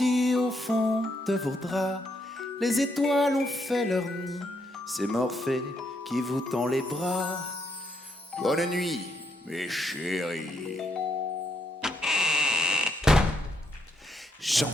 au fond de vos draps. Les étoiles ont fait leur nid. C'est Morphée qui vous tend les bras. Bonne nuit, mes chéris.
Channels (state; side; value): normal; both; correlation 0.76